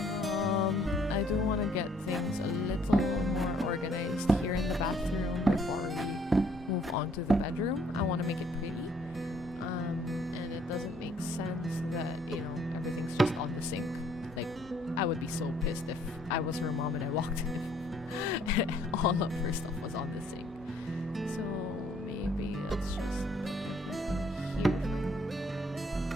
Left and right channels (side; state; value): both; normal; correlation 0.63